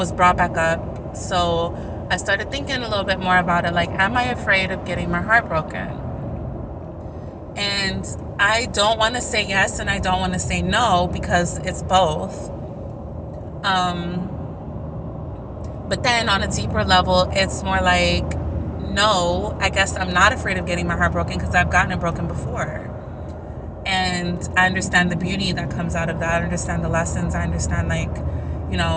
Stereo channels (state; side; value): identical; both; correlation 1.00